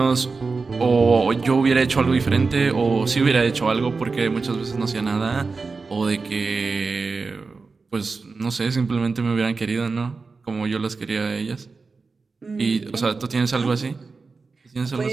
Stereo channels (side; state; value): left; quieter; 4.3 dB